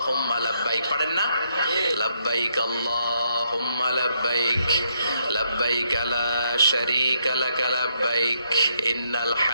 লাব্বাইক। পারেন না? লাব্বাইক আল্লাহুম্মা লাব্বাইক, লাব্বাইক লা শারীকা লাকা লাব্বাইক, ইন্নাল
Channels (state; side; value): inverted; both; correlation -0.75